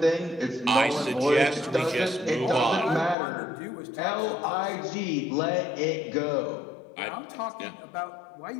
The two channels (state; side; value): drops out; right; at 3.2 s